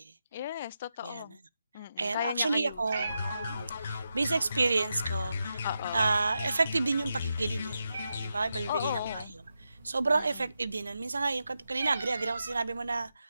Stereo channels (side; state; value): both; inverted; correlation -0.88